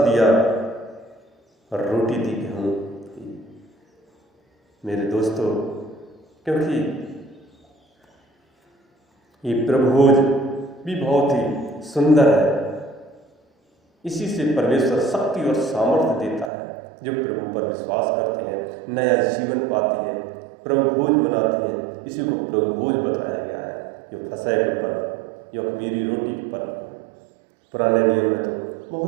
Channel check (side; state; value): left; drops out; at 16.5 s